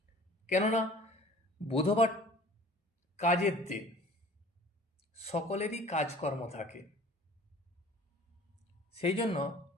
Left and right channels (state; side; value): normal; both; correlation 0.48